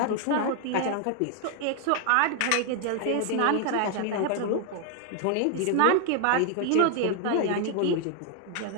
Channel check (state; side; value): different; both; correlation 0.00